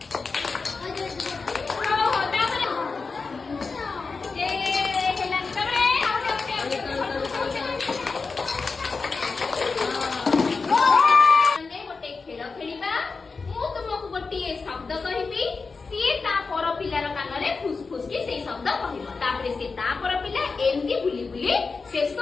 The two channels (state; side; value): quieter; right; 4.4 dB